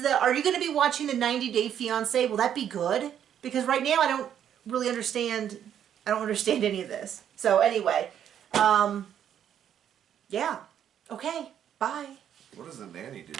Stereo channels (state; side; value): quieter; left; 9.6 dB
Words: Are you going to be watching the 90-Day Fiancé? Will that be good? Because right now I don't really understand. I don't understand any of this. So anyway, yeah. Okay. Bye. What does the nanny do?